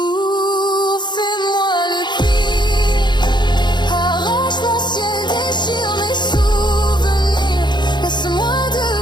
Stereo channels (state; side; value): late; right; 0.21 ms